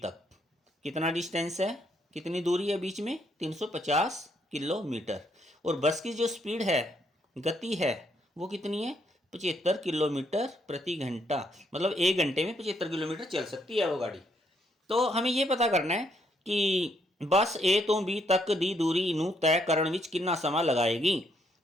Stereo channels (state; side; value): normal; both; correlation 0.73